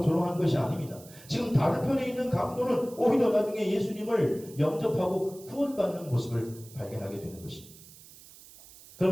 조롱하는 것이 아닙니다. 지금 다른 편에 있는 강도는 오히려 나중에 예수님을 영접하고 구원받는 모습을 발견하게 되는 것입니다.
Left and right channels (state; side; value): noise; right; hiss, 20 dB below the sound